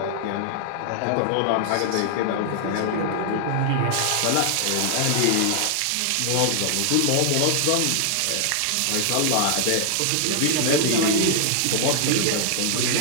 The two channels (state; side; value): different; both; correlation 0.00